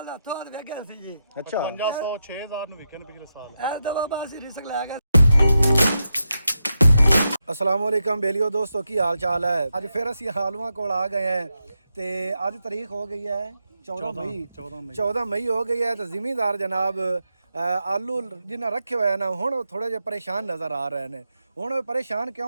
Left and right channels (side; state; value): both; inverted; correlation -0.87